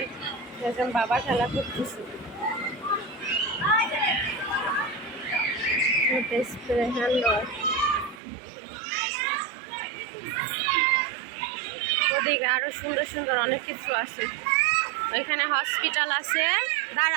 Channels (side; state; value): left; drops out; at 8.2 s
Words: দেখলাম বাবা খেলা করতেছে। ওদিকে আরো সুন্দর সুন্দর অনেক কিছু আছে। ওইখানে হসপিটাল আছে,